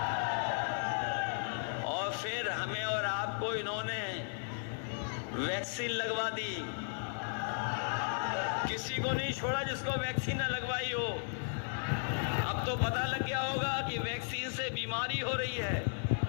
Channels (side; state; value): right; silent; digital silence